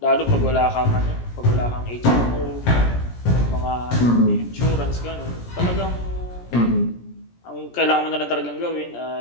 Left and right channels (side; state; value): right; late; 17 ms